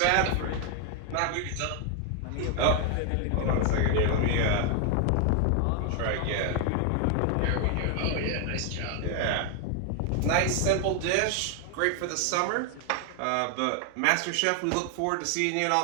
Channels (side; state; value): both; different; correlation 0.00